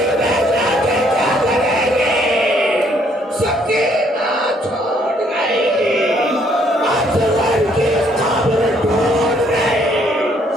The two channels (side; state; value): both; normal; correlation 0.67